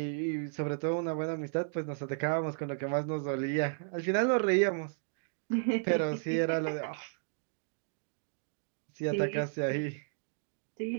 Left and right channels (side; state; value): left; silent; digital silence